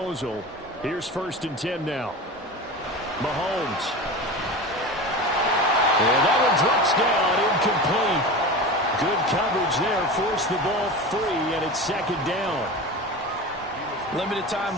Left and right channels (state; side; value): normal; both; correlation 0.29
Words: Here's 1st and 10 now. Mahomes. And that one drops down, incomplete. Good coverage there, forced the ball free, and it's 2nd down. Limited time